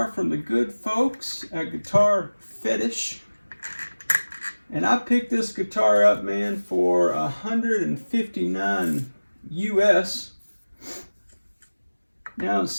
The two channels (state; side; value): inverted; both; correlation -1.00